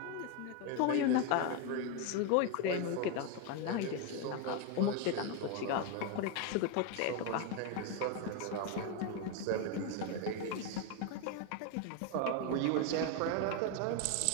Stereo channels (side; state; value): both; different; correlation 0.02